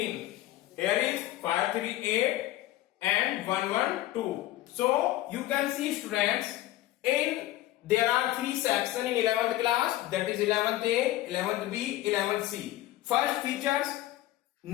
Here is 5, 3, 8 and 1, 1, 2. So you can see students, there are three sections in 11th class, that is 11th A, 11th B, 11th C. First features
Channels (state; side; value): quieter; right; 15.5 dB